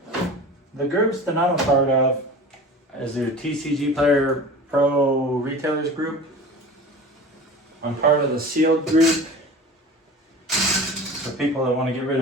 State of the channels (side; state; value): both; normal; correlation 0.37